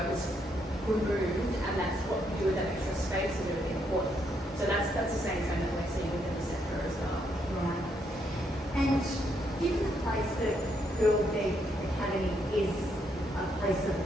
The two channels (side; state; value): both; normal; correlation 0.75